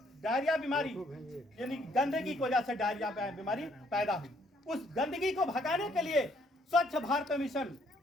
डायरिया बीमारी यानी गंदगी की वजह से डायरिया बीमारी पैदा हुई। उस गंदगी को भगाने के लिए स्वच्छ भारत मिशन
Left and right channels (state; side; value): normal; both; correlation 0.67